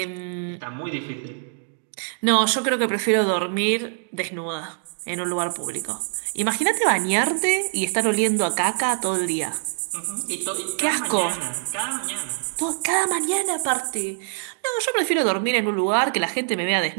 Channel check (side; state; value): left; silent; digital silence